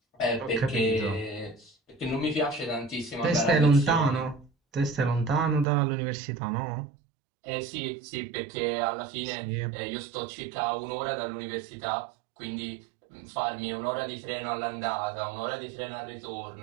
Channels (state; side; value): drops out; left; at 5.7 s